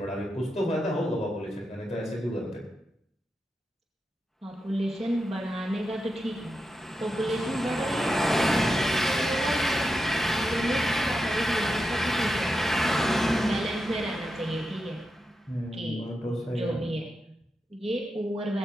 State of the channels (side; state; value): both; normal; correlation 0.88